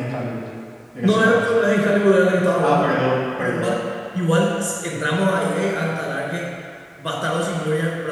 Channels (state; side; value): identical; both; correlation 1.00